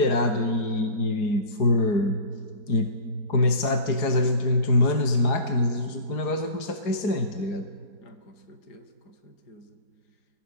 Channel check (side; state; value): right; late; 4.8 ms